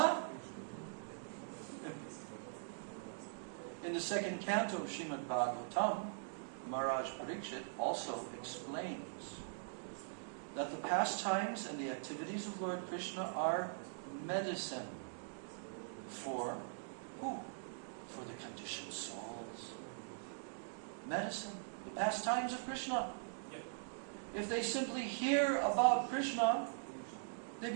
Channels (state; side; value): silent; left; digital silence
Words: In the 2nd canto of Srimad Bhagavatam, Maharaj Parikshit also explains that the pastimes and the activities of Lord Krishna are medicine for who? For the conditioned souls. Medicine. The pastimes of Krishna. If they simply hear about Krishna, they